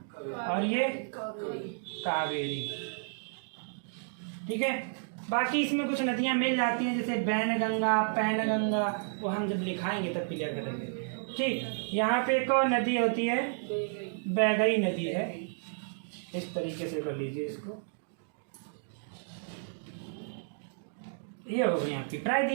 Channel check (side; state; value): left; silent; digital silence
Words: और ये कावेरी। ठीक है, बाकी इसमें कुछ नदियां मिल जाती हैं, जैसे बैनगंगा, पैनगंगा, वो हम जब लिखाएंगे तब क्लियर करेंगे। ठीक, यहाँ पे एक और नदी होती है, बैगई नदी है। इस तरीके से कर लीजिए इसको। ये हो गई आपकी